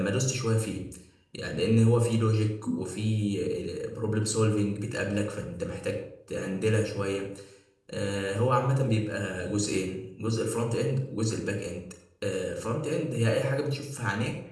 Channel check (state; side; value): identical; both; correlation 1.00